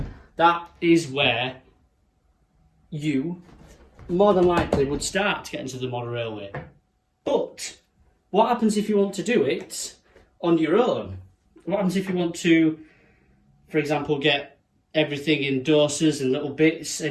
that is where you more than likely would start to get into the model railway. But what happens if you want to do it on your own? What happens if you want to, for example, get everything in doses and little bits,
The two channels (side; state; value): both; identical; correlation 1.00